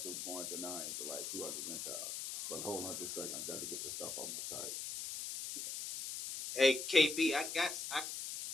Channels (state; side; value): noise; left; hiss, 5 dB below the sound